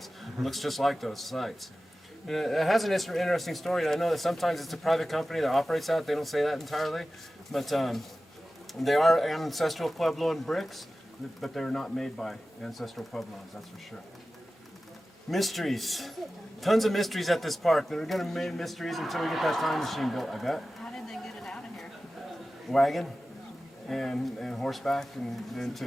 It looks just like those sites. And it has an interesting story. I know that sometimes it's a private company that operates out. They don't say that entirely, but they are ancestral Puebloan bricks, but they're not made by ancestral Puebloans, that's for sure. Mysteries. Tons of mysteries at this park. They're going to remain mysteries until we get that time machine built, I bet. How did they get it out of here? Wagon and horseback, and then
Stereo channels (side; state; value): both; normal; correlation 0.95